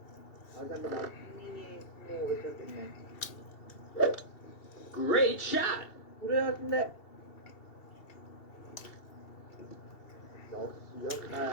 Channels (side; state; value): right; late; 2.7 ms